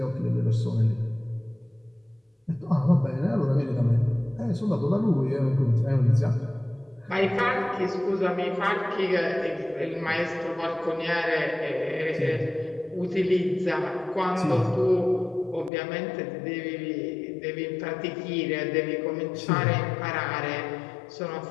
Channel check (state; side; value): drops out; right; at 15.7 s